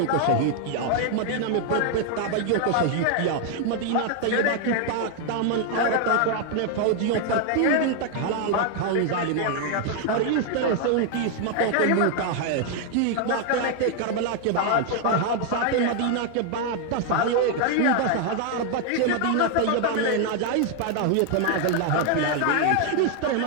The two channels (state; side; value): different; both; correlation 0.00